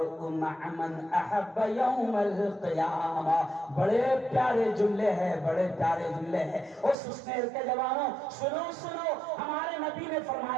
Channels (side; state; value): left; drops out; at 7.0 s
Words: مع من احب یوم القیامہ۔ بڑے پیارے جملے ہیں، بڑے پیارے جملے ہیں۔ اس سنیر کے جوانوں سنو سنو، ہمارے نبی نے